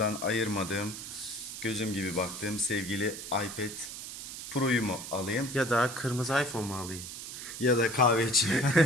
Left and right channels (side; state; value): right; noise; hiss, 9 dB below the sound